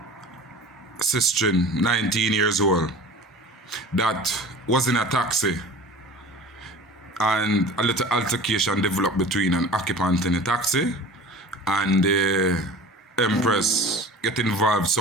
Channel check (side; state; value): both; normal; correlation 0.39